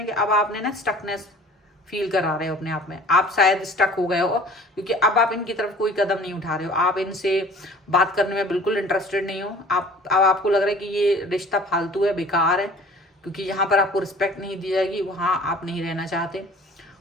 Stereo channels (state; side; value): normal; both; correlation 0.47